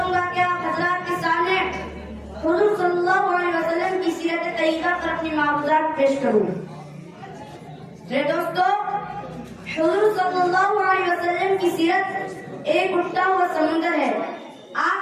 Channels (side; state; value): both; identical; correlation 1.00